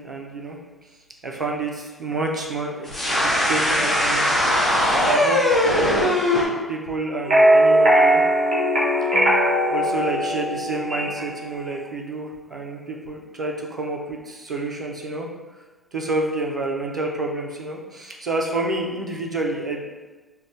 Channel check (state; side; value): normal; both; correlation 0.60